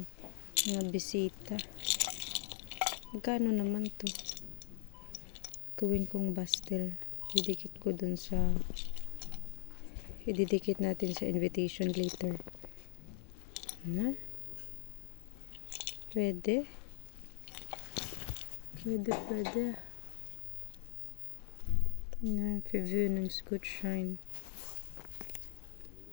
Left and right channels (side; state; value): right; silent; 52 dB below the other